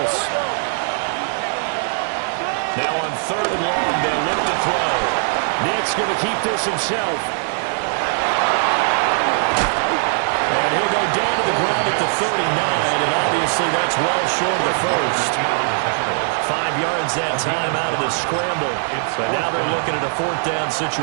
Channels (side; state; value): left; silent; digital silence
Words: Now on 3rd and long, they'll look to throw. Nick's going to keep this himself. And he'll go down to the ground at the 39, and obviously that's well short of the first. 5 yards that time out of the scramble. But now they're looking at a 4th down